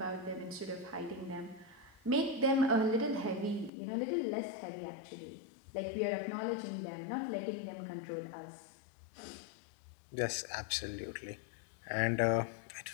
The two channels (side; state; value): right; drops out; at 3.7 s